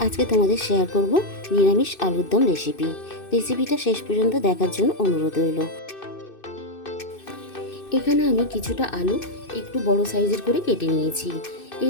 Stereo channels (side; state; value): right; late; 2.6 ms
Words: আজকে তোমাদের শেয়ার করব নিরামিষ আলুর দম রেসিপি। রেসিপিটা শেষ পর্যন্ত দেখার জন্য অনুরোধ রইল। এখানে আমি কিছুটা আলু একটু বড় সাইজের করে কেটে নিয়েছি।